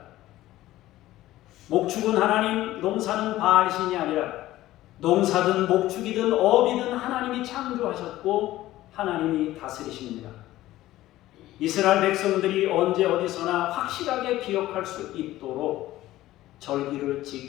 목축은 하나님, 농사는 바알신이 아니라 농사든 목축이든 업이든 하나님이 창조하셨고 하나님이 다스리십니다. 이스라엘 백성들이 언제 어디서나 확실하게 기억할 수 있도록 절기를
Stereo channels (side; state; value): right; quieter; 15.5 dB